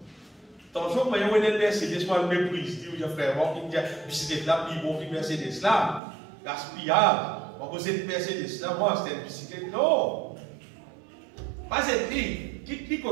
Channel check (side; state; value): left; drops out; at 6.0 s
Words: Tant que vous voyez une Mercedes, moi, le méprise, dit, frère, moi, qui me dit, bicyclette là, puis bon, puis Mercedes là, gaspillage. On pose une Mercedes là, moi, c'était une bicyclette. Non! Pas cette ligne. Qui